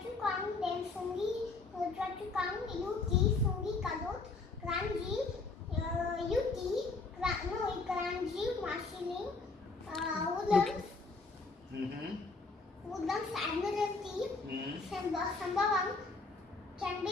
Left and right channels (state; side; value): quieter; right; 3.8 dB